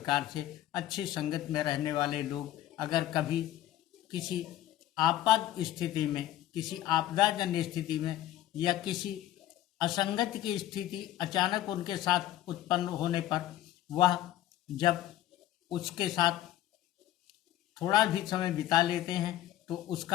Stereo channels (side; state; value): right; quieter; 13.4 dB